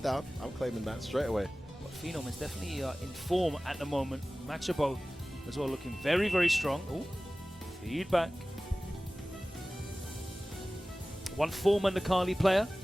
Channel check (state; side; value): normal; both; correlation 0.97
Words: I'm claiming that straight away. But Phenom is definitely in form at the moment. Machabo as well, looking very, very strong. Oh, feedback. One former Nakali player,